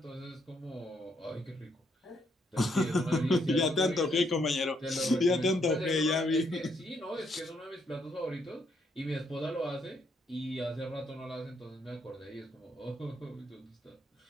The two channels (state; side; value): normal; both; correlation 0.74